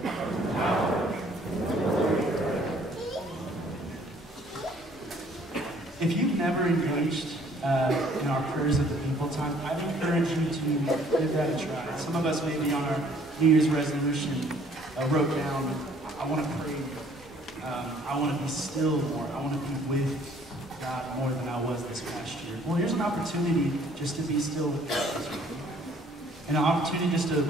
and the power, and the glory forever. If you've never engaged in our prayers of the people time, I'd encourage you to give that a try. Some of us maybe on our New Year's resolution wrote down, I want to pray, I want to be still more, I want to be with God more than I was this past year. Well, here's an opportunity just to be still with God this week. And an opportunity just to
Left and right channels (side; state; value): both; normal; correlation 0.59